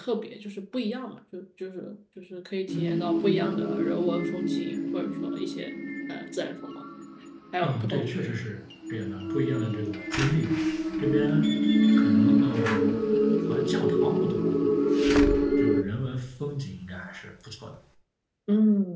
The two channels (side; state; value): both; identical; correlation 1.00